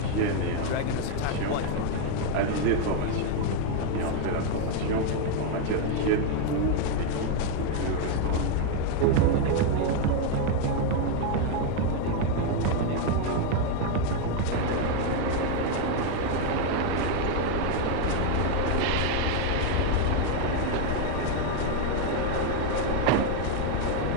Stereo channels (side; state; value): both; different; correlation 0.01